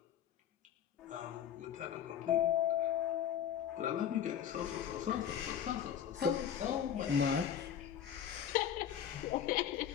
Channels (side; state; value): right; quieter; 9.3 dB